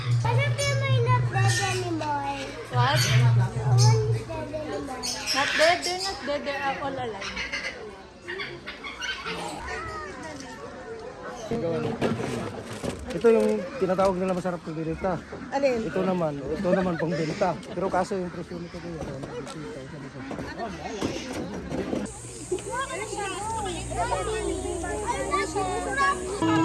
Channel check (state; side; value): identical; both; correlation 1.00